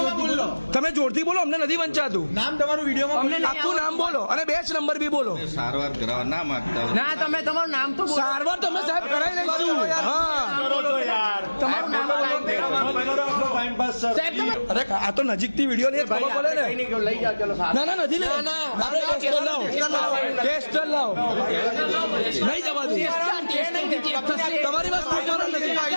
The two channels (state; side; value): inverted; both; correlation -1.00